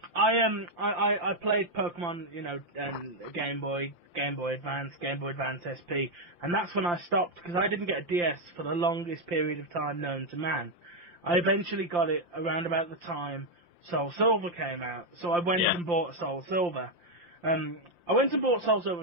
I played Pokemon, and Game Boy Advance, Game Boy Advance SP, and that's when I stopped because I didn't get a DS for the longest period of time known to man. I eventually got it around about the time Soul Silver came out, so I went and bought Soul Silver. I went and bought Soul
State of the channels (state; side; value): late; left; 5.8 ms